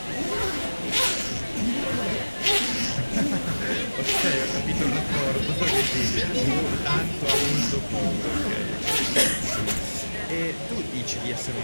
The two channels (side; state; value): both; inverted; correlation -1.00